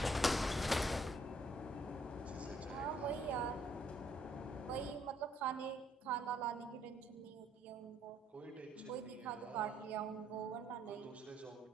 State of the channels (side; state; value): both; normal; correlation 0.68